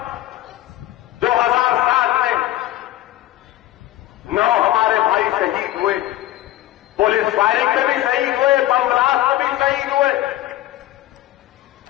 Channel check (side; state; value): right; quieter; 15.1 dB